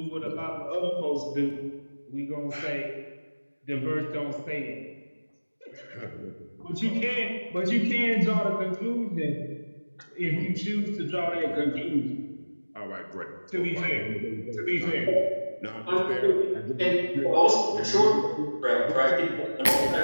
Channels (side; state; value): both; inverted; correlation -1.00